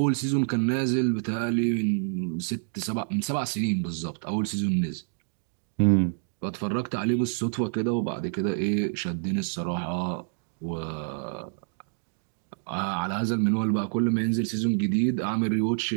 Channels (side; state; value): left; silent; digital silence